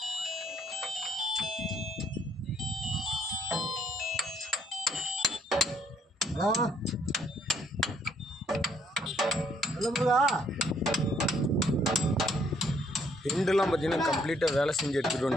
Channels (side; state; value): both; normal; correlation 0.67